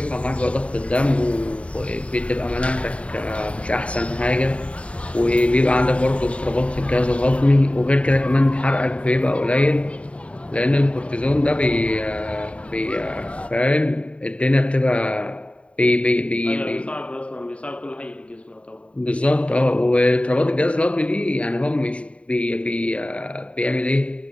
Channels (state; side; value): late; right; 0.063 ms